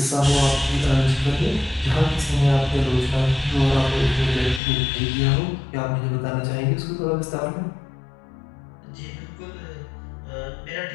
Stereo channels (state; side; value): drops out; right; at 4.6 s